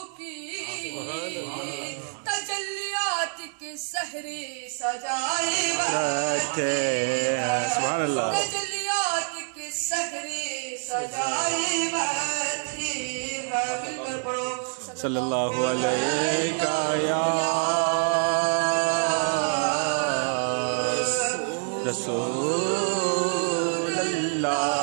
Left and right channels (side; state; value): left; silent; 61 dB below the other